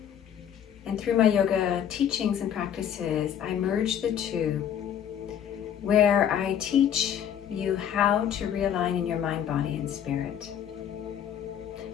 And through my yoga teachings and practices, I merge the two, where I teach you how to realign in your mind, body, and spirit.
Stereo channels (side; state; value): right; quieter; 9.3 dB